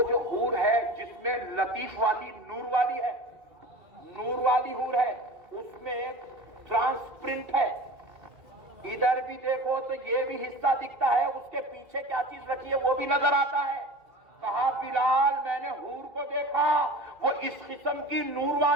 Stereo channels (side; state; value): left; late; 2.4 ms